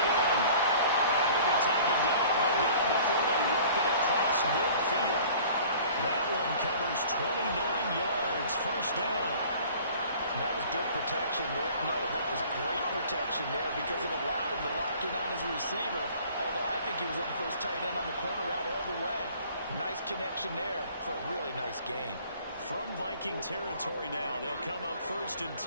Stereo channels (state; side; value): inverted; both; correlation -0.49